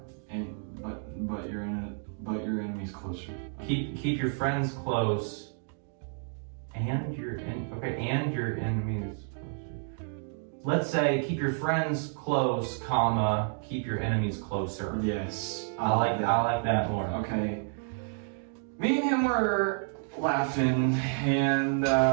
And but your enemies closer. Keep your friends close and your and your enemies closer. Let's say keep your friends close, comma, keep your enemies closer. Yes. I like that more. Okay. Me and him were laughing, and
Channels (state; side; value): silent; left; 58 dB below the other